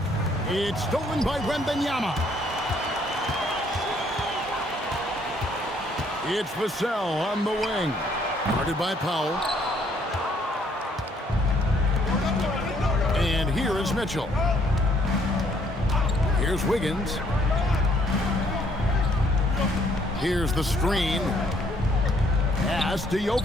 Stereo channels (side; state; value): both; normal; correlation 0.66